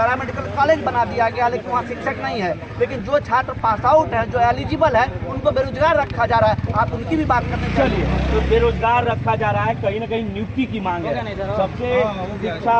कॉलेज बना दिया गया लेकिन वहाँ शिक्षक नहीं है। लेकिन जो छात्र पास आउट है, जो एलिजिबल है, उनको बेरोजगार रखा जा रहा है। आप उनकी भी बात करने चलिए। तो बेरोजगार रखा जा रहा है, कहीं ना कहीं नियुक्ति की मांग है। सबसे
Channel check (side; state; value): both; identical; correlation 1.00